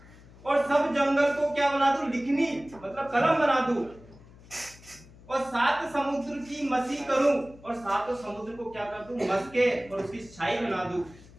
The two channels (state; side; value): noise; left; hum, 22 dB below the sound